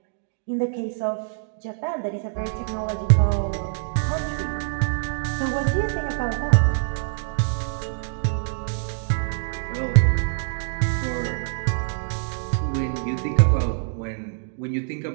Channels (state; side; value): silent; left; digital silence